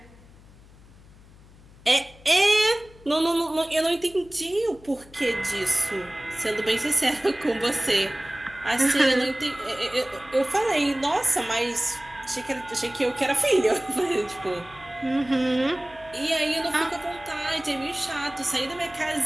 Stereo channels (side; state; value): left; noise; hum, 23 dB below the sound